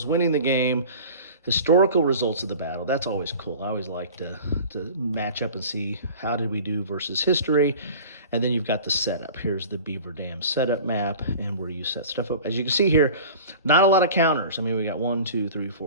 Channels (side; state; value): both; inverted; correlation -0.40